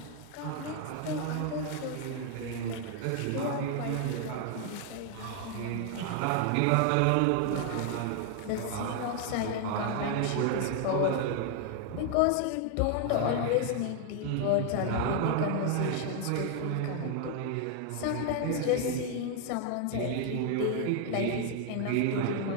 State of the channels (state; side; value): different; both; correlation 0.00